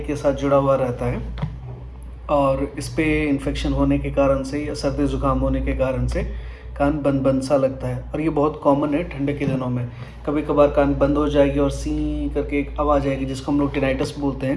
के साथ जुड़ा हुआ रहता है। और इस पे इन्फेक्शन होने के कारण से या सर्दी ज़ुकाम होने के कारण से कान बंद बंद सा लगता है। और ये बहुत कॉमन है ठंडे के दिनों में। कभी कभार कान बंद हो जाएगी और सी करके एक आवाज़ आएगी, जिसको हम लोग टिनाइटस बोलते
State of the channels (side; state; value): both; identical; correlation 1.00